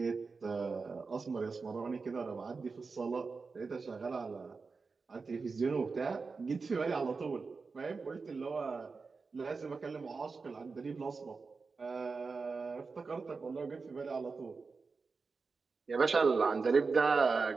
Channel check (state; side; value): quieter; left; 4.5 dB